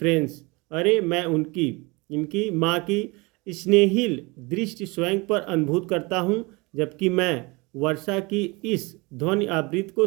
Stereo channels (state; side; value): quieter; left; 26.0 dB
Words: अरे मैं इनकी माँ की स्नेहिल दृष्टि स्वयं पर अनुभूत करता हूँ, जबकि मैं वर्षा की इस ध्वनि आवृत्ति को